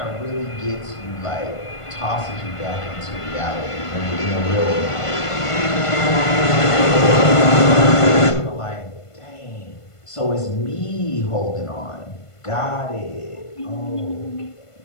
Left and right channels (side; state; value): right; late; 1.5 ms